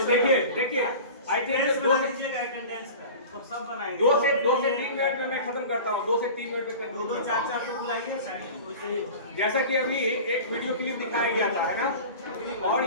देखिए आई थिंक 2 से 3 मिनट में मैं खत्म करता हूँ. 2 से 3 मिनट में 2-4 पे बुलाइए. जैसा कि अभी एक वीडियो क्लिप दिखाया गया था, है ना, और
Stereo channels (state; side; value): inverted; both; correlation -0.36